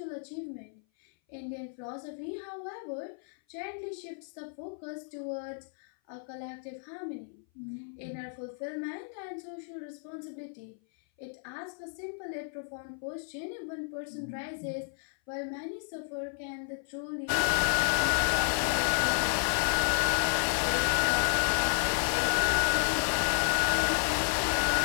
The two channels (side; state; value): right; silent; 56 dB below the other